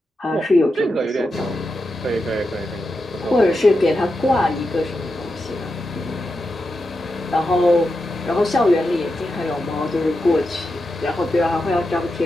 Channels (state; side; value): normal; both; correlation 0.88